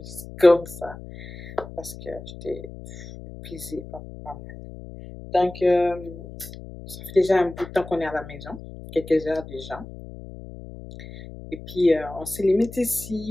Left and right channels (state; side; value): noise; left; hum, 14 dB below the sound